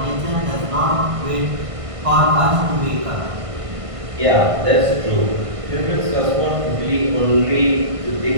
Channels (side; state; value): left; late; 1.5 ms